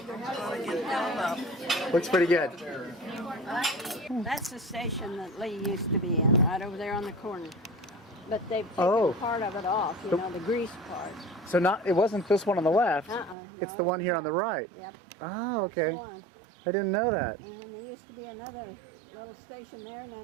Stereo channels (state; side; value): drops out; left; at 13.4 s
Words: gonna get filled up. Looks pretty good. That's the station that Lee used to be in, right over there on the corner. But they've taken Oh. part of it off, you know, the grease part. So it wasn't this one on the left. It's No, the one here on the right. Yep. Oh, That's the okay. one. I didn't know that. And there used to be another little station there, and